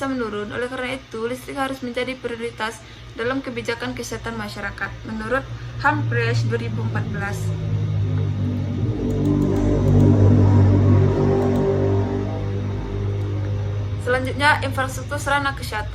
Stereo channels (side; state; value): both; identical; correlation 1.00